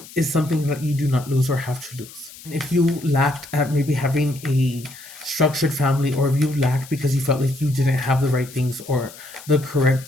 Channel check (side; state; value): left; noise; hiss, 18 dB below the sound